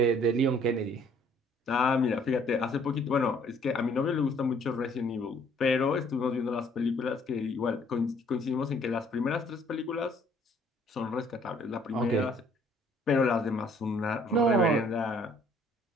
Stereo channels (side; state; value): both; normal; correlation 0.61